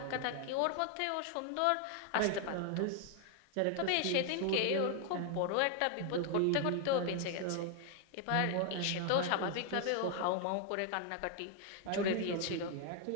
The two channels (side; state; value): both; different; correlation 0.00